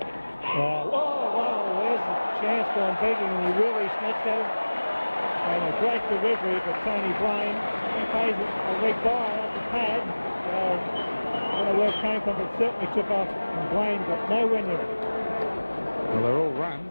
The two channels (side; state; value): both; inverted; correlation -1.00